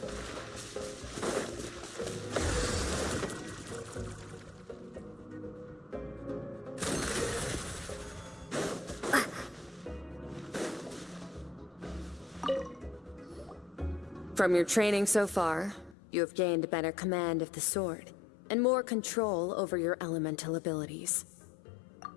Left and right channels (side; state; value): right; drops out; at 16.0 s